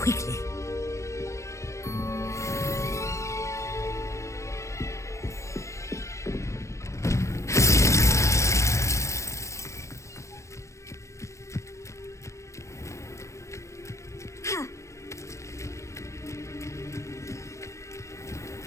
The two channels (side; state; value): right; late; 0.15 ms